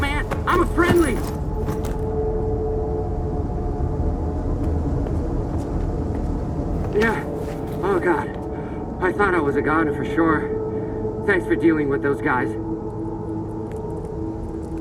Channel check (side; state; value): both; identical; correlation 1.00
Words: I'm a friendly! Yeah. Oh, God. I thought I was a goner for sure. Thanks for dealing with those guys.